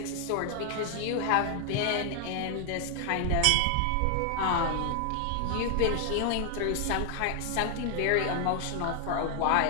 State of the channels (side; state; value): both; different; correlation 0.00